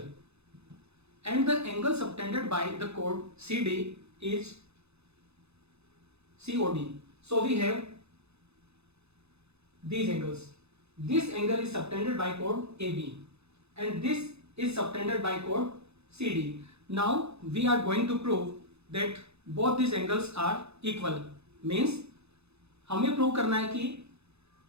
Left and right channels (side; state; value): left; late; 0.80 ms